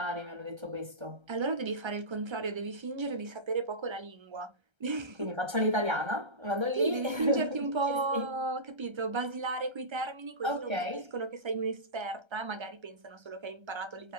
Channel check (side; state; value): left; late; 1.3 ms